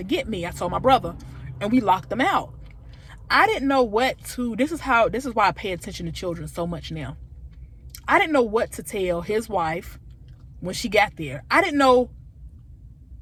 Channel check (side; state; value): both; identical; correlation 1.00